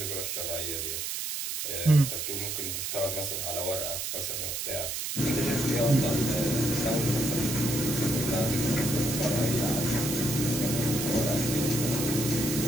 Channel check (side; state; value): right; noise; hiss, 3 dB below the sound